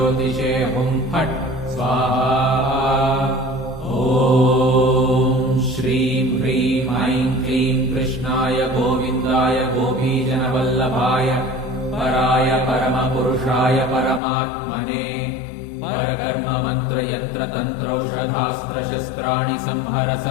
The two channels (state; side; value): drops out; right; at 14.2 s